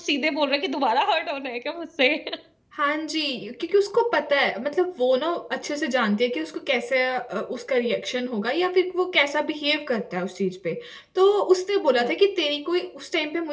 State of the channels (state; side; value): identical; both; correlation 1.00